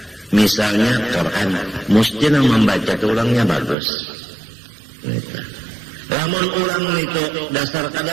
misalnya Quran, mesti nang membaca itu orangnya bagus. Lamun orang itu dasar kada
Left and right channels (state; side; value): drops out; left; at 3.8 s